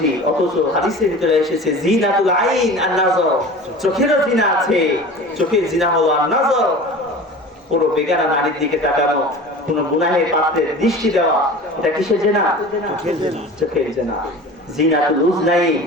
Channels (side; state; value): both; normal; correlation 0.37